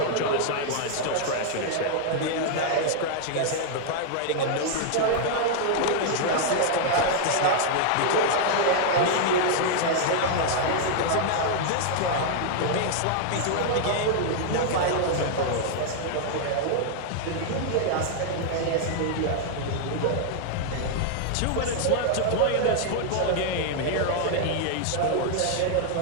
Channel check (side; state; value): both; different; correlation -0.01